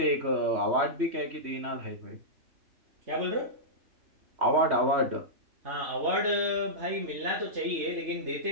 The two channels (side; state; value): left; late; 3.1 ms